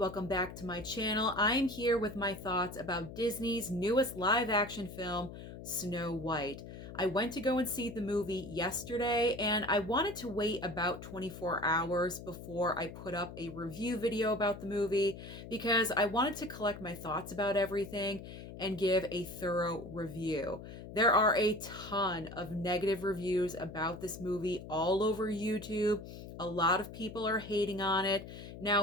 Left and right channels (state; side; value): noise; left; hum, 12 dB below the sound